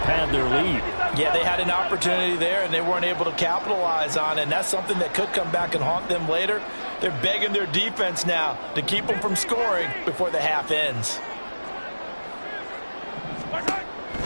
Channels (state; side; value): inverted; both; correlation -1.00